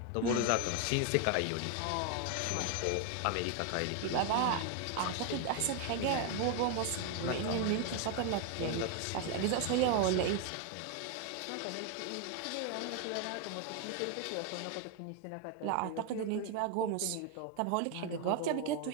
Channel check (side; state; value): both; different; correlation 0.01